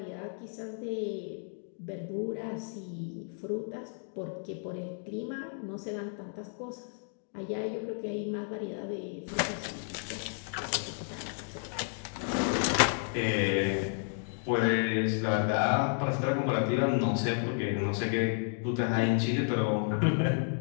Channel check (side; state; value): right; silent; 56 dB below the other